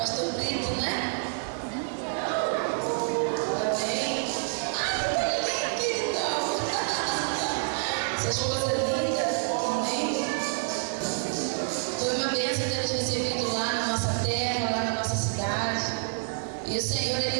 Brito, né? Esposa linda, amém? Foi uma bênção ter nos recebido lá na nossa terra, lá na nossa cidade. E o Senhor,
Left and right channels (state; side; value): silent; left; 59 dB below the other